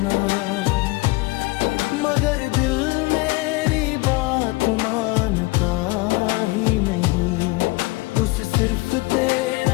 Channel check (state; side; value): quieter; right; 22.9 dB